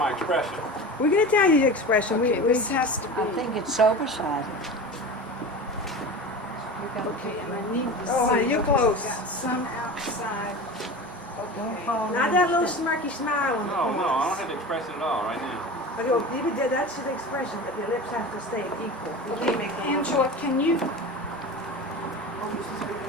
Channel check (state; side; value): normal; both; correlation 0.31